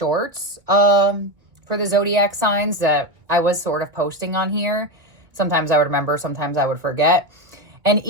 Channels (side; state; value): left; late; 1.8 ms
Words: for the zodiac signs that I was sort of posting on here. Sometimes I would remember, sometimes I would forget. And